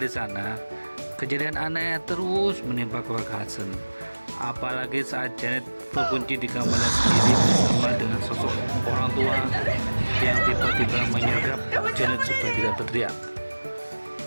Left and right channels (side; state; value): both; inverted; correlation -1.00